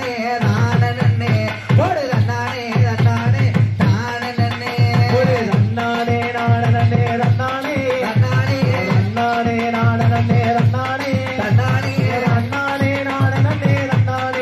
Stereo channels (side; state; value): both; identical; correlation 1.00